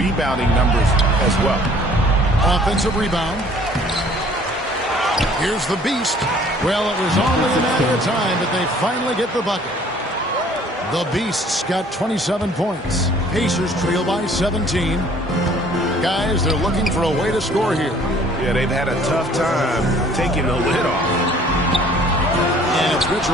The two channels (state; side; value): normal; both; correlation 0.55